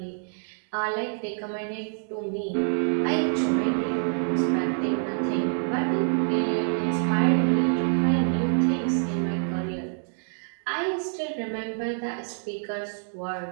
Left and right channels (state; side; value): silent; left; 60 dB below the other